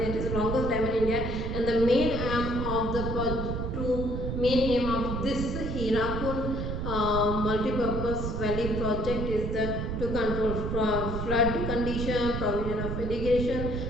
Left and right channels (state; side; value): noise; right; rumble, 3 dB below the sound